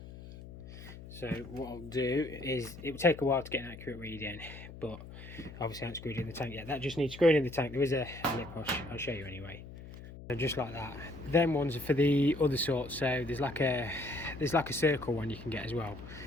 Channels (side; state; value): left; noise; hum, 14 dB below the sound